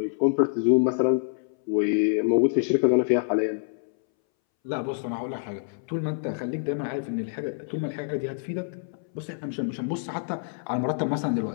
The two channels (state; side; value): silent; right; 61 dB below the other